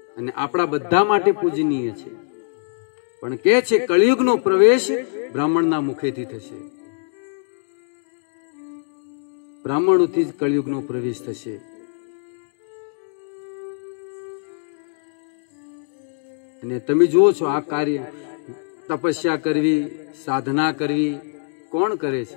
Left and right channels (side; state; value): right; silent; digital silence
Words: અને આપણા બધા માટે પૂજનીય છે. પણ કે છે કળિયુગનો પ્રવેશ બ્રાહ્મણના મુખેથી થશે. બ્રાહ્મણોથી જ કળિયુગનો પ્રવેશ થશે. અને તમે જુઓ છો આ કાર્ય, તપસ્યા કરવી, સાધના કરવી કોણ કરે